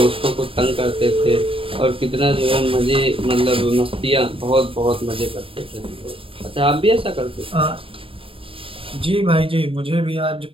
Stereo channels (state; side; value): late; left; 0.26 ms